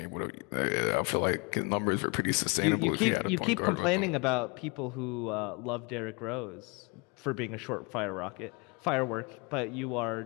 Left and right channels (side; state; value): right; quieter; 29.7 dB